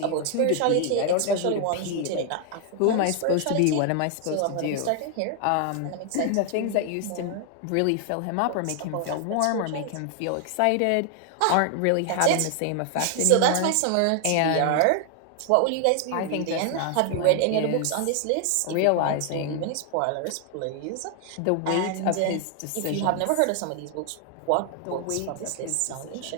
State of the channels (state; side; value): different; both; correlation 0.00